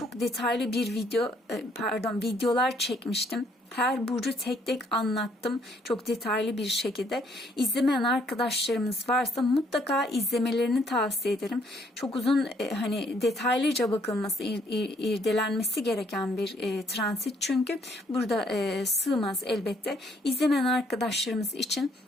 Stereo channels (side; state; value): both; normal; correlation 0.67